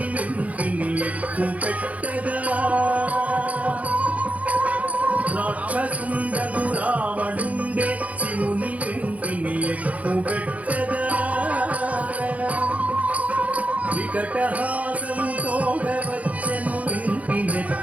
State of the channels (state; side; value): late; left; 0.068 ms